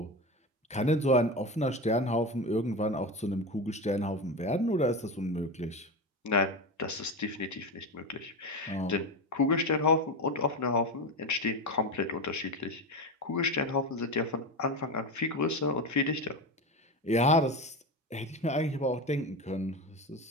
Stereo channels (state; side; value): normal; both; correlation 0.20